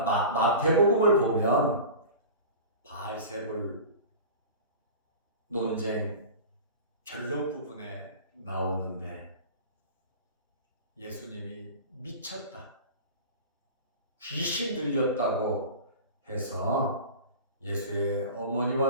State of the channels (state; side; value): inverted; both; correlation -0.35